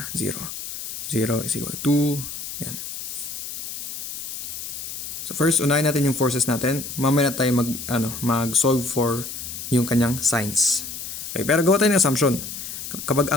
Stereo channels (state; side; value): noise; left; hiss, 8 dB below the sound